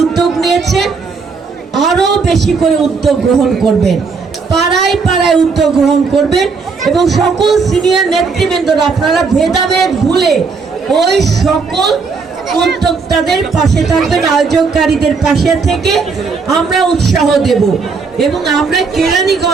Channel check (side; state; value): left; quieter; 4.9 dB